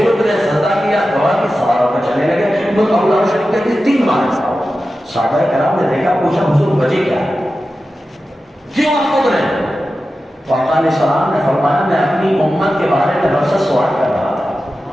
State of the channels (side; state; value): both; normal; correlation 0.93